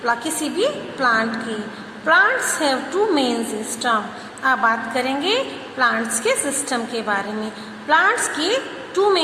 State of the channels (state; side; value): identical; both; correlation 1.00